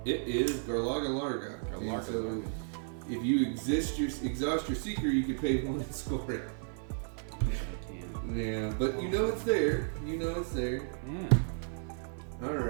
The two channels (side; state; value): left; silent; 55 dB below the other